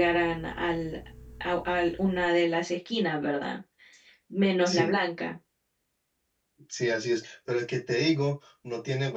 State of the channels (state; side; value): identical; both; correlation 1.00